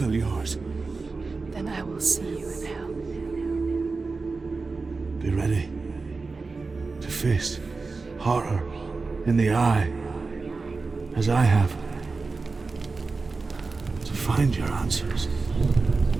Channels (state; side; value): quieter; left; 4.1 dB